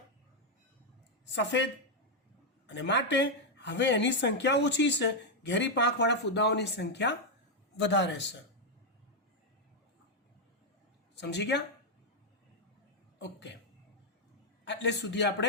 સફેદ, અને માટે હવે એની સંખ્યા ઓછી છે. ઘેરી પાંખવાળા ફૂદાઓની સંખ્યા વધારે છે. સમજી ગયા? ઓકે, એટલે સુધી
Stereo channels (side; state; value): both; normal; correlation 0.00